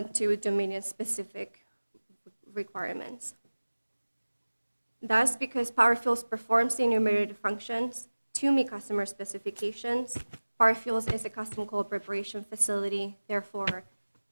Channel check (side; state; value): both; inverted; correlation -1.00